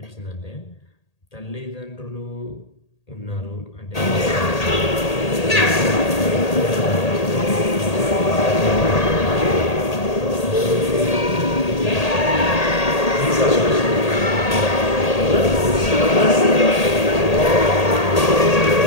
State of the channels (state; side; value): late; right; 1.8 ms